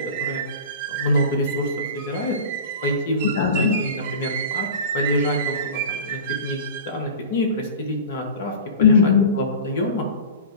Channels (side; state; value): both; inverted; correlation -0.34